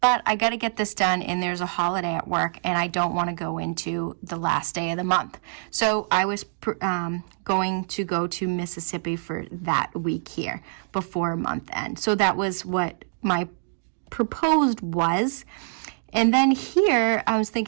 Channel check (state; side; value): silent; left; digital silence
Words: I got to get this done, and there's a holiday at work, and I don't want to go into the last day of the month. So I was going to go to Mississippi for that week here before month end. So that was what my proposed was. And then here I was